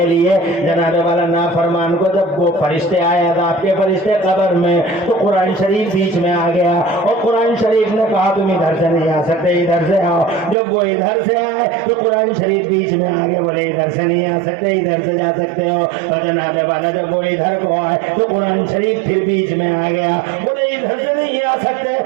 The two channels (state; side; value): drops out; left; at 10.6 s